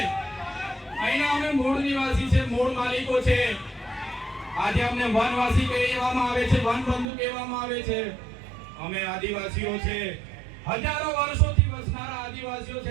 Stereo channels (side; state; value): left; drops out; at 7.1 s